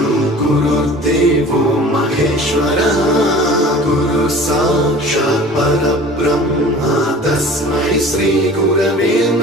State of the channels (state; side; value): normal; both; correlation 0.43